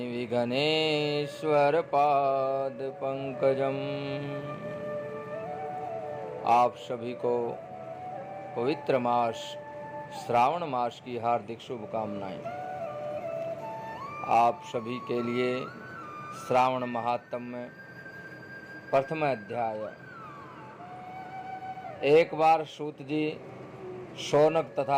विघ्नेश्वरपादपङ्कजम्। आप सभी को पवित्र मास श्रावण मास की हार्दिक शुभकामनाएं। आप सभी के लिए श्रावण महात्म्य प्रथम अध्याय। एक बार सूत जी शौनक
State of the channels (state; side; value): identical; both; correlation 1.00